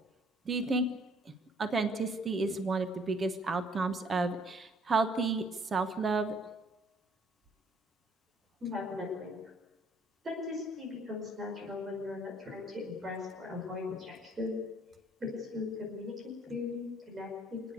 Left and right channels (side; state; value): both; normal; correlation 0.61